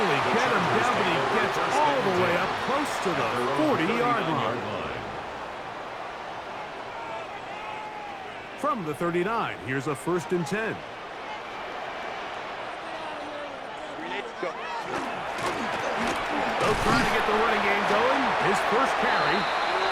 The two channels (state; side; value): identical; both; correlation 1.00